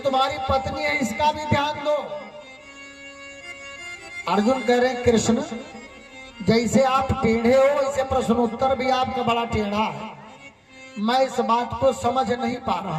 तुम्हारी पत्नी है, इसका भी ध्यान दो। अर्जुन कह रहे कृष्ण, जैसे आप टेढ़े हो इसे प्रश्नोत्तर भी आपका बड़ा टेढ़ा है। मैं इस बात को समझ नहीं पा रहा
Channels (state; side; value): identical; both; correlation 1.00